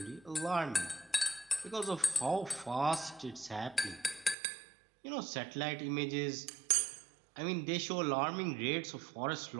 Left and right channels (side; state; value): left; drops out; at 4.4 s